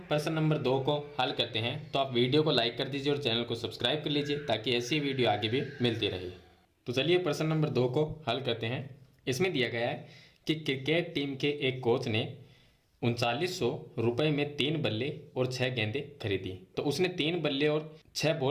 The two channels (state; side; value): identical; both; correlation 1.00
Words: प्रश्न नंबर 2 को हल करते हैं। तो आप वीडियो को लाइक कर दीजिए और चैनल को सब्सक्राइब कर लीजिए ताकि ऐसी वीडियो आगे भी मिलती रहे। तो चलिए प्रश्न नंबर 2 को हल करते हैं। इसमें दिया गया है कि क्रिकेट टीम के एक कोच ने 3900 रुपये में 3 बल्ले और 6 गेंदें खरीदी। तो उसने 3 बल्ले और 6